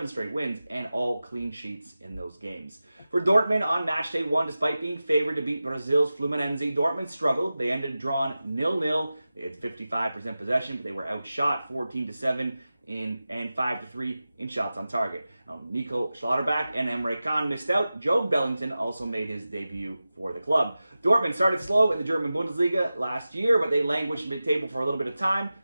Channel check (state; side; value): inverted; both; correlation -0.95